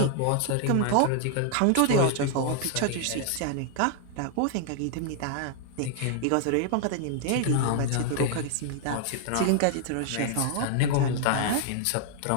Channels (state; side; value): different; both; correlation 0.00